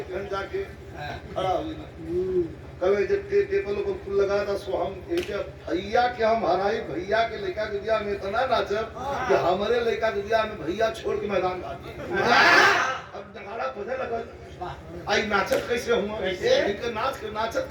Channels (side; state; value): both; identical; correlation 1.00